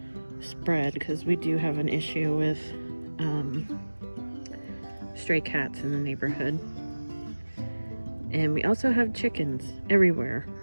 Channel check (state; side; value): inverted; both; correlation -1.00